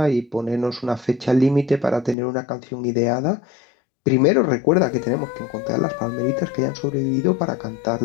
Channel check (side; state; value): right; drops out; at 2.1 s